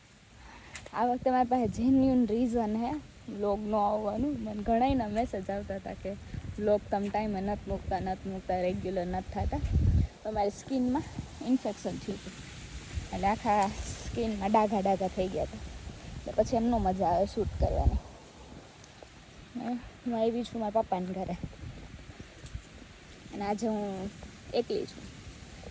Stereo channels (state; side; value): identical; both; correlation 1.00